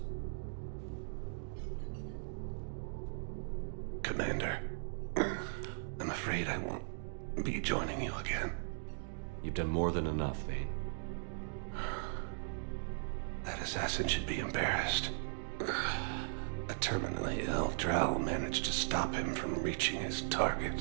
Commander, I'm afraid I won't be joining you again. You've done more than enough, Vane. That assassin should be embarrassed. A terminally ill Drow managed to stop him from reaching his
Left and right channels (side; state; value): left; silent; digital silence